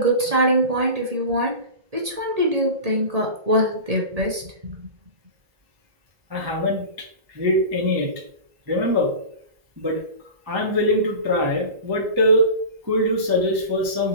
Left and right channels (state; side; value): late; left; 1.8 ms